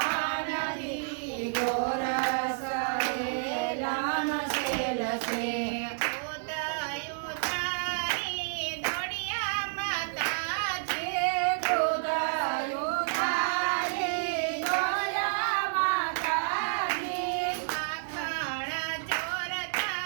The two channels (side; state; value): left; silent; 58 dB below the other